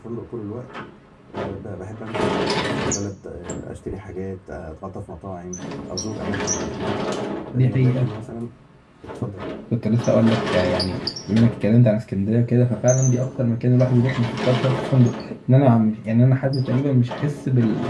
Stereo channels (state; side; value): identical; both; correlation 1.00